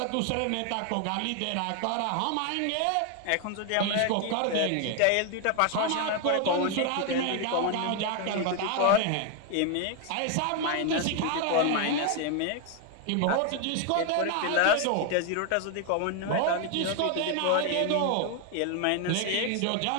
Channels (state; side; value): different; both; correlation 0.01